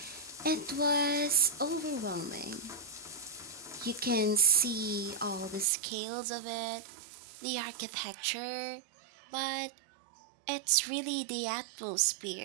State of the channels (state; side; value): drops out; left; at 5.7 s